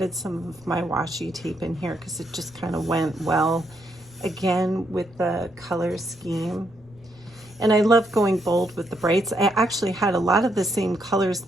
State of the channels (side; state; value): right; noise; rumble, 29 dB below the sound